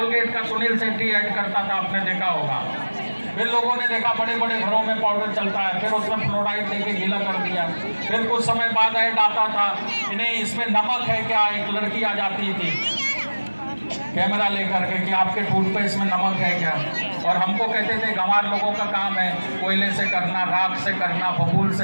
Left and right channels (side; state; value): both; inverted; correlation -1.00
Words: का सुनील शेट्टी ऐड करता था, आपने देखा होगा। फिर लोगों ने देखा बड़े बड़े घरों में पाउडर चलता है, फिर उसमें फ्लोराइड देके गीला कर दिया। फिर कुछ समय बाद ऐड आता था कि नहीं इसमें नमक है क्या, एक लड़की आ जाती थी कैमरा लेकर के कि आपके टूथपेस्ट में नमक है क्या, और हमको कहते थे गंवार लोगों का काम है कोयले से करना, राख से करना, बबूल से